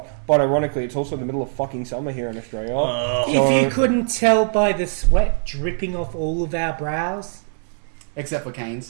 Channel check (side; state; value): left; silent; digital silence